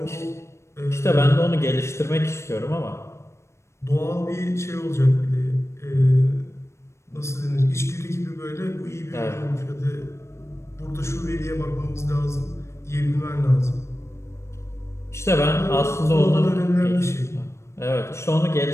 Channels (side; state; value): right; late; 0.13 ms